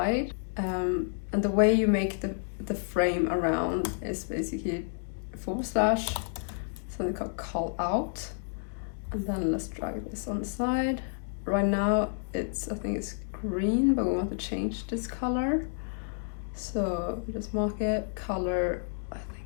and the way you make the frame around is basically something called call out, and then let's drag this on the side. Right now I think it's green, but we want to change this color, so just mark it color, I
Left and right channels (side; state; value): right; silent; digital silence